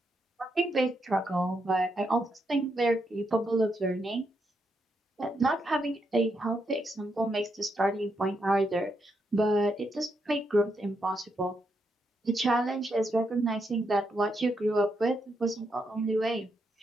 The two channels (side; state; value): both; normal; correlation 0.80